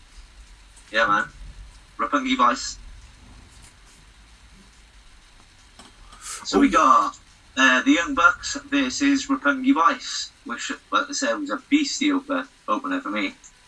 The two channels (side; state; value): both; identical; correlation 1.00